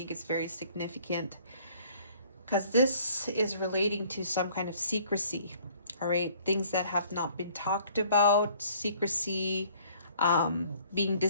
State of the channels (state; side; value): inverted; both; correlation -0.57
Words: it's very significant because this is relating to some kind of secrecy. All right, things that have not been talked about, secrecy, being